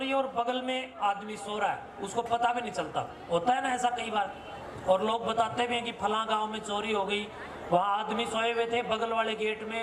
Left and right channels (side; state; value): both; identical; correlation 1.00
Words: है और बगल में आदमी सो रहा है, उसको पता भी नहीं चलता, होता है ना ऐसा कई बार। और लोग बताते भी हैं कि फलां गांव में चोरी हो गई, वहाँ आदमी सोए हुए थे, बगल वाले गेट